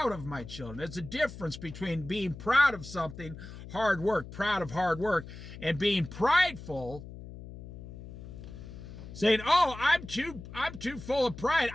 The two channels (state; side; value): noise; left; hum, 13 dB below the sound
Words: of my children. There's a difference between being proud of something, hard work, proud of hard work, and being prideful, saying, "Oh, I'm too full of pride.